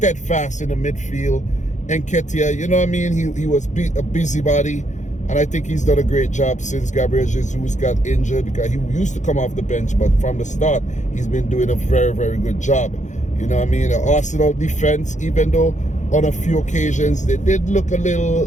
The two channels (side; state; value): right; late; 0.35 ms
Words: in the midfield. Nketiah, he was a busybody, and I think he's done a great job since Gabriel Jesus got injured, because he used to come off the bench, but from the start, he's been doing a very, very good job. The Arsenal defense, even though on a few occasions they did look a